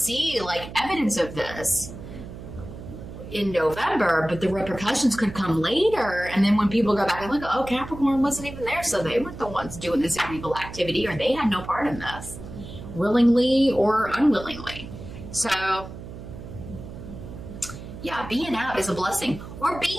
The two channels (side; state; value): right; noise; hum, 12 dB below the sound